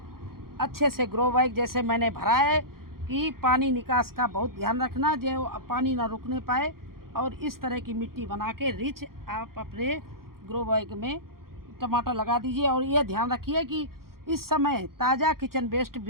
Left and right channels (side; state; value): left; late; 0.93 ms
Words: अच्छे से ग्रो बैग जैसे मैंने भरा है कि पानी निकास का बहुत ध्यान रखना, जो पानी ना रुकने पाए। और इस तरह की मिट्टी बना के रिच आप अपने ग्रो बैग में टमाटर लगा दीजिए। और ये ध्यान रखिए कि इस समय ताज़ा किचन वेस्ट